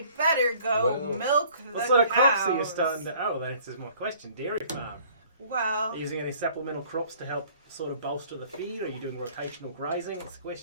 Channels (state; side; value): inverted; both; correlation -0.55